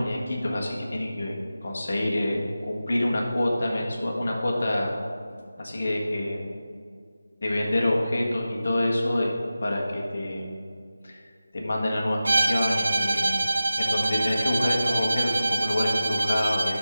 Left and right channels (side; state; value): both; inverted; correlation -0.95